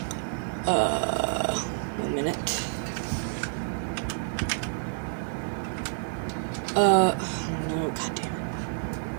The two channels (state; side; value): silent; left; digital silence